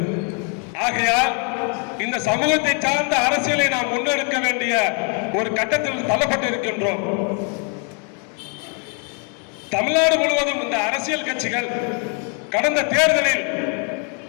ஆகையால் இந்த சமூகத்தை சார்ந்த அரசியலை நாம் முன்னெடுக்க வேண்டிய ஒரு கட்டத்தில் தள்ளப்பட்டு இருக்கின்றோம். தமிழ்நாடு முழுவதும் இந்த அரசியல் கட்சிகள் கடந்த தேர்தலில்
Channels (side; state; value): right; quieter; 38.8 dB